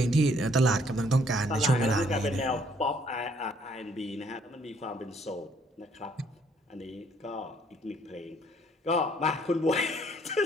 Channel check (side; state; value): both; normal; correlation 0.64